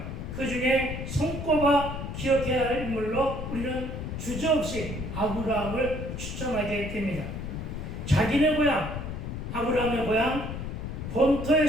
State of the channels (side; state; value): left; noise; rumble, 6 dB below the sound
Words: 그 중에 손꼽아 기억해야 할 인물로 우리는 주저없이 아브라함을 추천하게 됩니다. 자기네 고향, 아브라함의 고향